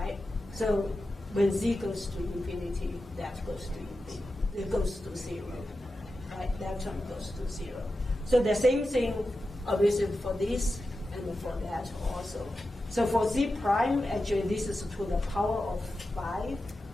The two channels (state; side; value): normal; both; correlation 0.91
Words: So when z goes to infinity, that goes to infinity. It goes to 0, right? That term goes to 0. So the same thing, obviously, for this and for that also. So for z prime, actually, this is to the power of 5.